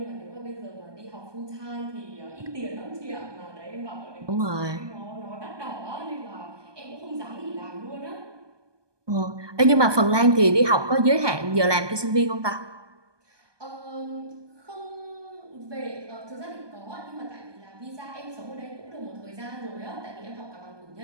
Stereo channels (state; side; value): late; left; 1.2 ms